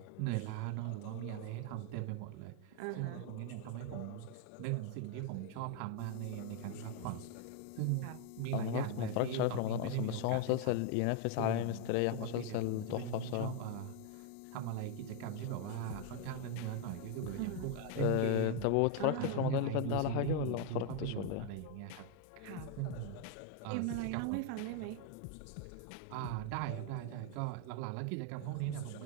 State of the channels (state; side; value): different; both; correlation 0.01